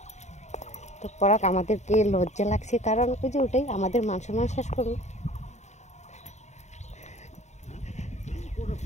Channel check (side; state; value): right; late; 0.33 ms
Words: তো পরাক আমাদেরকে লজ্জা লাগছে, কারণ ওই যে ওটাই আমাদের মান সম্মান শেষ করলো।